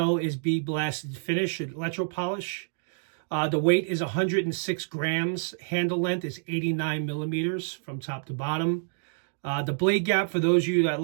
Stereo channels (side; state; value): left; silent; digital silence